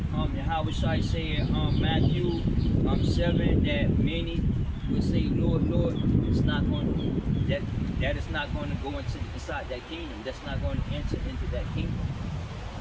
Yahweh Shai said Matthew 7 that many will say, Lord, Lord, it's not going to, that is not going to go inside that kingdom. That's not going to enter into that kingdom.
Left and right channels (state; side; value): identical; both; correlation 1.00